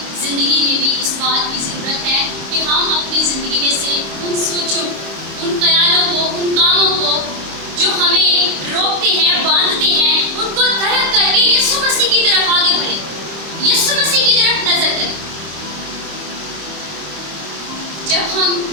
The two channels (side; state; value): left; late; 26 ms